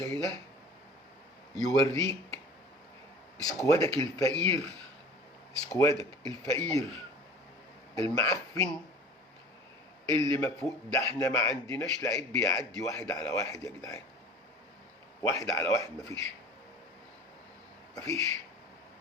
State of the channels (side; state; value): both; normal; correlation 0.42